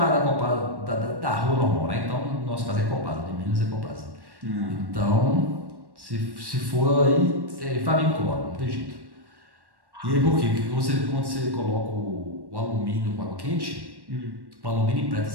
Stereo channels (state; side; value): late; left; 1.1 ms